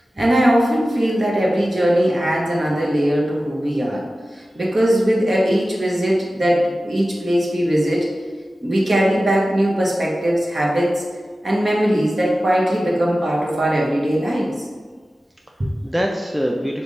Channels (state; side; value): normal; both; correlation 0.95